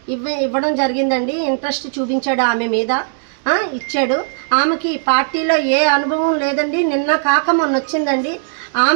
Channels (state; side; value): silent; left; digital silence